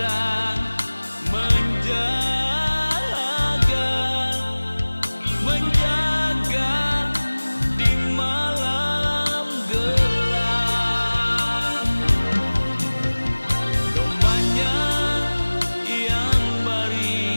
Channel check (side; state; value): both; inverted; correlation -1.00